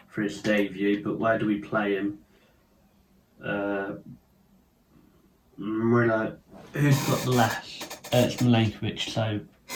for his debut, but where do we play him? Murillo, who's got the left? It's Milenkovic, so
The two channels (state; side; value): identical; both; correlation 1.00